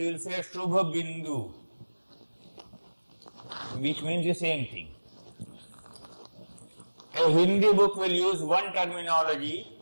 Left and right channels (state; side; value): inverted; both; correlation -1.00